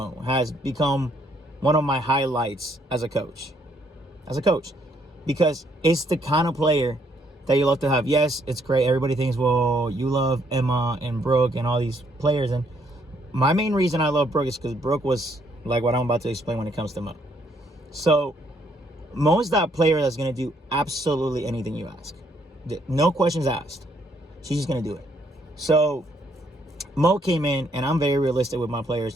has become one of my highlights as a coach, because it's the kind of player that you love to have. Yes, it's great. Everybody thinks, well, you love Emma and Brooke and all these players. And my main reason I love Brooke is because Brooke was like what I'm about to explain when it comes to Mo. So Mo is that player that's going to do absolutely anything you ask. No questions asked. She's just going to do it. So Mo came in, and I'm very realistic with my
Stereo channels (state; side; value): normal; both; correlation 0.70